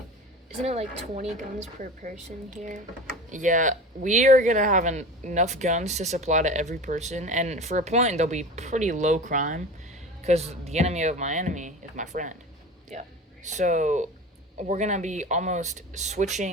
isn't it like 20 guns per person here? yeah, we are going to have enough guns to supply to every person. And for a point, they'll be pretty low crime because the enemy of my enemy is my friend. Yeah. So we're going to be almost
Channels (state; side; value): normal; both; correlation 0.34